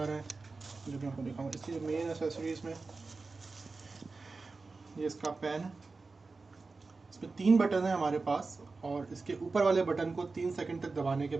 ہیں جو میں آپ کو دکھاؤں. اس کی مین اسیسریز میں یہ اس کا پین ہے. اس میں 3 بٹن ہیں ہمارے پاس, اور اس کے اوپر والے بٹن کو 3 سیکنڈ تک دبانے کے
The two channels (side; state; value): left; quieter; 3.9 dB